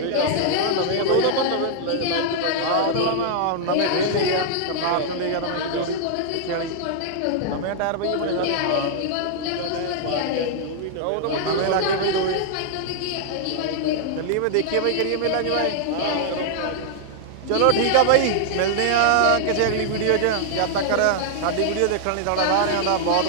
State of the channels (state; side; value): different; both; correlation -0.01